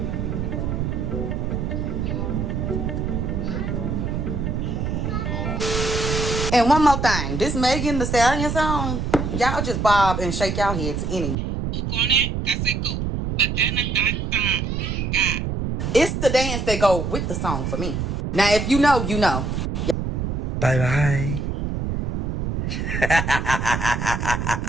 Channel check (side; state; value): right; noise; rumble, 2 dB below the sound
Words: And one more thing, this Megan Thee Stallion song, y'all just bob and shake y'all head to any. It's the dance that go with the song for me. Now, if you know, you know. Bye bye.